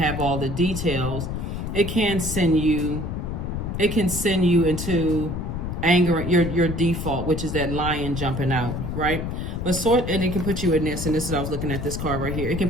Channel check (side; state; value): left; noise; rumble, 4 dB below the sound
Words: all the details, it can send you into anger, your default, which is that lion jumping out, right? But and it can put you in this, and this is, I was looking at this card right here, it can